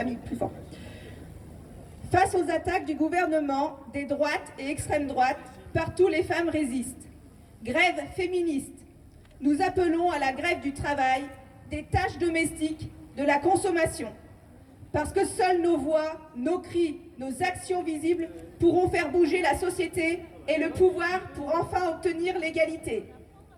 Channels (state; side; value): identical; both; correlation 1.00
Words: mis plus fort. Face aux attaques du gouvernement, des droites et extrêmes droites, partout les femmes résistent. Grève féministe. Nous appelons à la grève du travail, des tâches domestiques, de la consommation. Parce que seules nos voix, nos cris, nos actions visibles pourront faire bouger la société et le pouvoir pour enfin obtenir l'égalité.